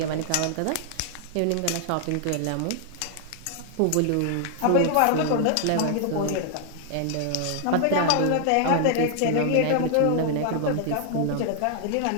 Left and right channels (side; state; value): both; different; correlation 0.00